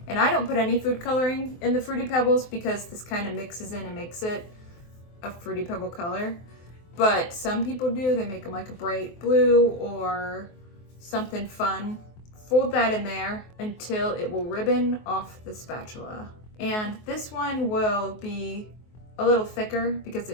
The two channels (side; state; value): right; late; 23 ms